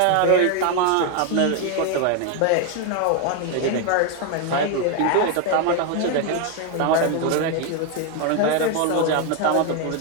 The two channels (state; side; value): different; both; correlation 0.01